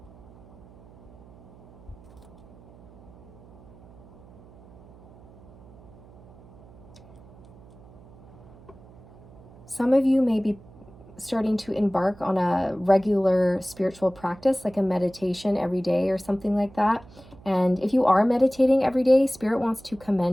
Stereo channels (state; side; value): noise; right; hum, 23 dB below the sound